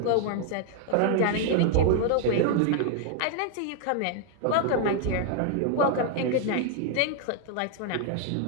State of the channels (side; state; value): both; different; correlation 0.00